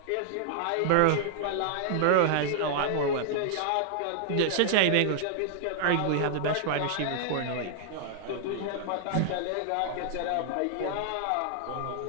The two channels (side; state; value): both; different; correlation -0.01